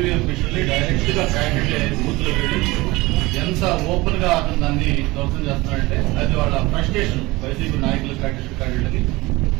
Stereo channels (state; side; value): quieter; left; 21.1 dB